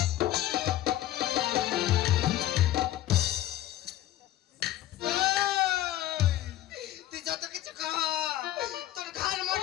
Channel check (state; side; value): quieter; right; 13.8 dB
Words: তুই যত কিছু খা, তোর ঘর